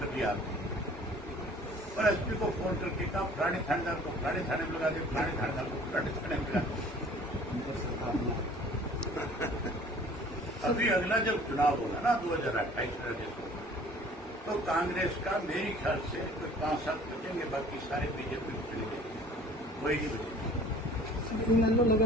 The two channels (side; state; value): both; normal; correlation 0.50